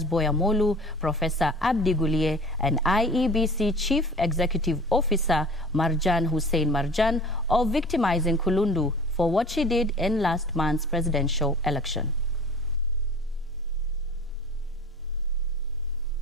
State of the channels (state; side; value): normal; both; correlation 0.42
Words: Boya Molu, Professor Abdi Gulie, and IEBC Chief Executive Officer Marjan Hussein Marjan of victimizing Kulundu for what she did in last month's presidential election.